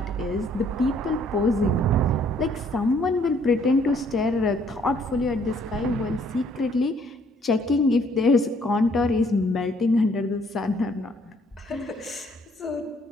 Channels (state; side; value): normal; both; correlation 0.64